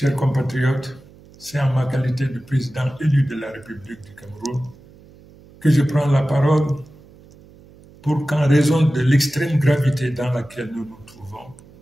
compatriotes, c'est en ma qualité de président élu de la République du Cameroun que je prends la parole pour qu'en raison de l'extrême gravité dans laquelle nous nous trouvons,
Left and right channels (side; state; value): right; noise; hum, 24 dB below the sound